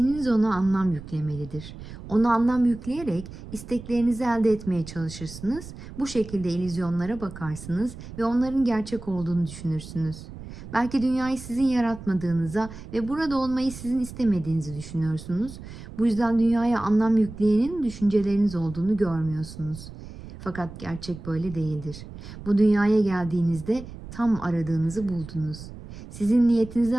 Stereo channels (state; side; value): noise; right; rumble, 13 dB below the sound